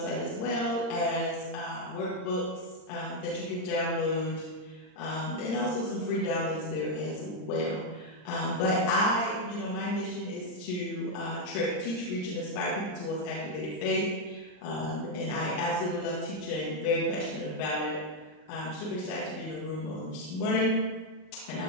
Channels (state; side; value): late; right; 39 ms